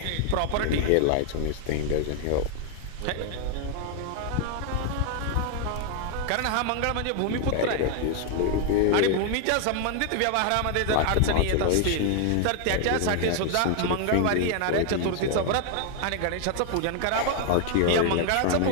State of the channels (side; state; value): both; different; correlation 0.00